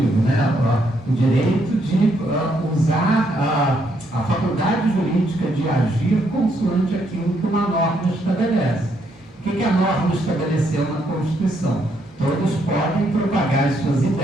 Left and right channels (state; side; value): normal; both; correlation 0.74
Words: né? O direito de usar a faculdade jurídica de agir consoante aquilo que uma norma estabelece. O que a norma estabeleceu na Constituição? Todos podem propagar as suas